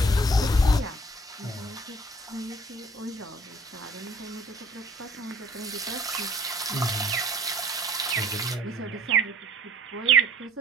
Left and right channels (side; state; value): both; normal; correlation 0.55